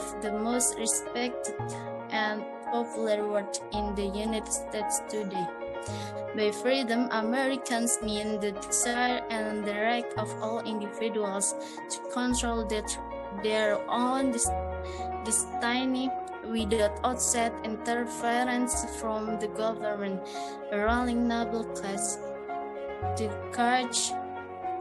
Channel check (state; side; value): identical; both; correlation 1.00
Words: the most respected and popular words in the United States today. By freedom, Americans mean the desire and the right of all individuals to control their own destiny without outside interference from the government, a ruling noble class, the church,